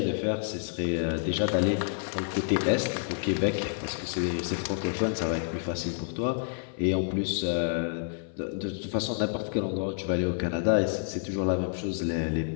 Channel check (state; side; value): silent; right; 59 dB below the other